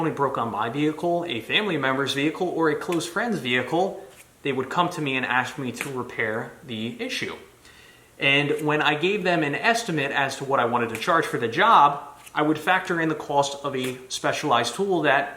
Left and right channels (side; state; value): both; identical; correlation 1.00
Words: broke on my vehicle, a family member's vehicle, or a close friend's vehicle, they would come to me and ask me to repair the issue. And when I gave them an estimate as to what I wanted to charge for the job, I would factor in the cost of a specialized tool